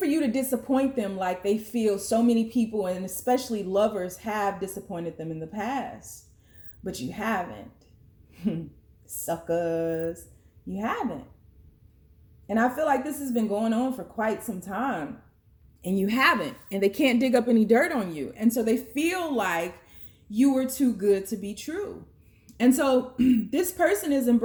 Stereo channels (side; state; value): both; identical; correlation 1.00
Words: you to disappoint them like they feel so many people, and especially lovers, have disappointed them in the past. But you haven't. Suckers. You haven't. And I feel like this has been going on for quite some time. And you haven't. And they can't dig up any dirt on you. And so they feel like you were too good to be true. And so this person is